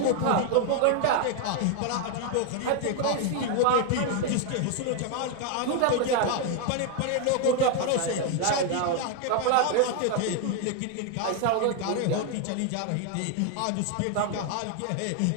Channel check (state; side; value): different; both; correlation 0.01